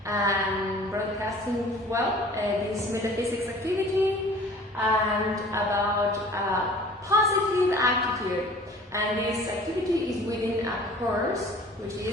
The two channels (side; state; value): both; normal; correlation 0.48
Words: and broadcasting this metaphysics activity and about positive attitude. And this activity is within a course which